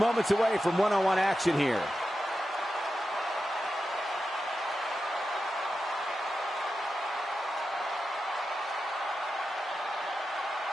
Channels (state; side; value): normal; both; correlation 0.90